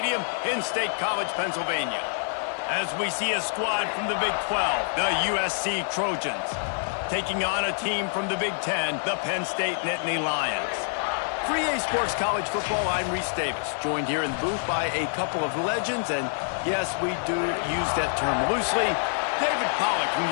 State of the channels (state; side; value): silent; right; 60 dB below the other